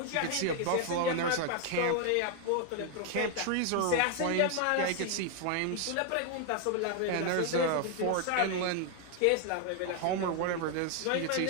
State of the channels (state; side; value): different; both; correlation 0.00